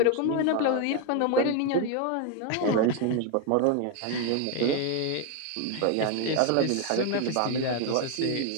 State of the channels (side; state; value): both; different; correlation 0.01